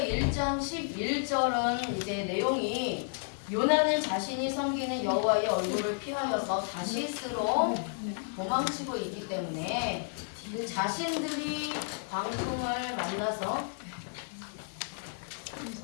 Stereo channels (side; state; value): right; silent; digital silence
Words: 11절은 이제 내용이 요나는 자신이 섬기는 여호와의 얼굴을 피하여서 다시스로 도망치고 있기 때문에 그 자신들이 광풍을